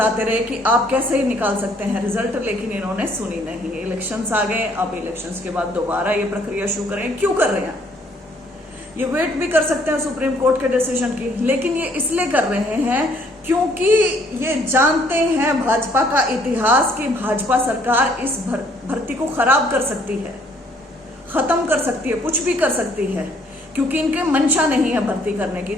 रहे कि आप कैसे ही निकाल सकते हैं रिजल्ट, लेकिन इन्होंने सुनी नहीं। इलेक्शंस आ गए, अब इलेक्शंस के बाद दोबारा ये प्रक्रिया शुरू करें। क्यों कर रहे हैं? ये वेट भी कर सकते हैं सुप्रीम कोर्ट के डिसीजन की, लेकिन ये इसलिए कर रहे हैं क्योंकि ये जानते हैं भाजपा का इतिहास कि भाजपा सरकार इस भर्ती को खराब कर सकती है, खत्म कर सकती है, कुछ भी कर सकती है, क्योंकि इनके मंशा नहीं है भर्ती करने की।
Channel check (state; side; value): normal; both; correlation 0.64